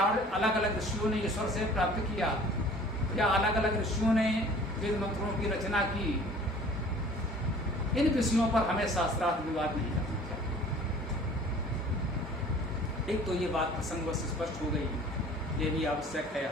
अलग अलग ऋषियों ने ईश्वर से प्राप्त किया, या अलग अलग ऋषियों ने वेद मंत्रों की रचना की। इन विषयों पर हमें शास्त्रार्थ विवाद नहीं करना चाहिए। एक तो ये बात प्रसंगवश स्पष्ट हो गई, ये भी आवश्यक है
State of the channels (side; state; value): both; normal; correlation 0.48